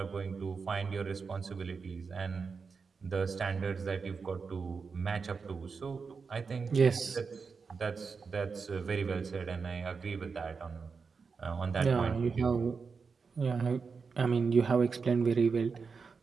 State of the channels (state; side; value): quieter; left; 5.2 dB